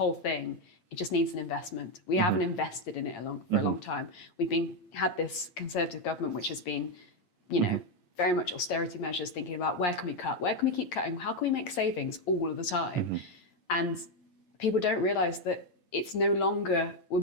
thing, it just needs an investment. We haven't invested in it for a long time. We've had this Conservative government which has been, you know, very much austerity measures, thinking about where can we cut, where can we keep cutting, how can we make savings all of the time? And people don't realise that it's no longer we're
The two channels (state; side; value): late; right; 8.8 ms